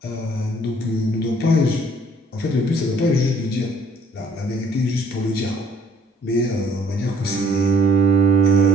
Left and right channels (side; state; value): both; normal; correlation 0.60